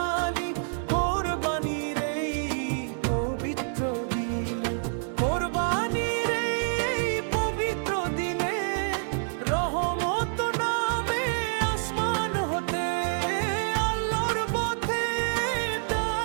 কোরবানির এই পবিত্র দিনে, কোরবানির এই পবিত্র দিনে রহমত নামে আসমান হতে, আল্লাহর পথে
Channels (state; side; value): silent; left; digital silence